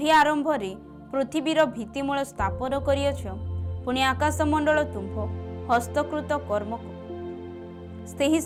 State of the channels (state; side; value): identical; both; correlation 1.00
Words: आरंभ रे पृथ्वीर भित्तिमूल स्थापन करियछ। पुणी आकाशमंडल तुम्भ हस्तकृत कर्म सेही